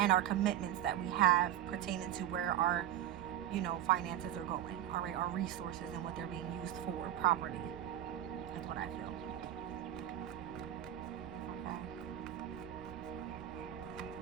our commitments that we have pertaining to where our, finances are going. All right, our resources and what they're being used for properly is what I feel.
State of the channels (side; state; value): left; quieter; 11.9 dB